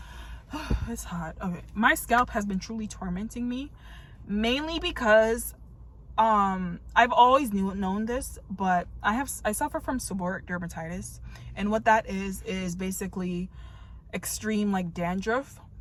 It's hot. Okay. My scalp has been truly tormenting me, mainly because I've always known this, but I suffer from seborrheic dermatitis, and what that is basically extreme like dandruff,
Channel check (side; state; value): both; identical; correlation 1.00